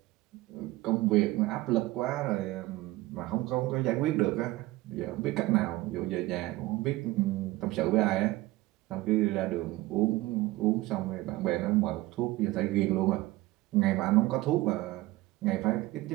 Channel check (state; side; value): quieter; left; 18.5 dB